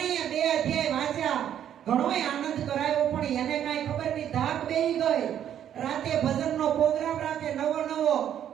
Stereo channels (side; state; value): left; quieter; 10.1 dB